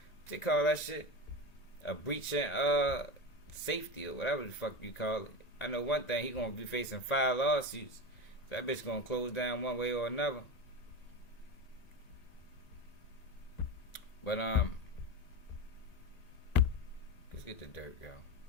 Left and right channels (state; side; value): late; right; 1.9 ms